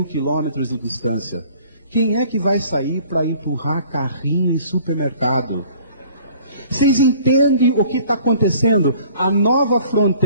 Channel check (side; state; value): both; inverted; correlation -0.53